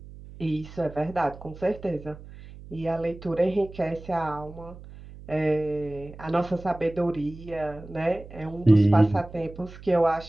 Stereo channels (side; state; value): right; noise; hum, 16 dB below the sound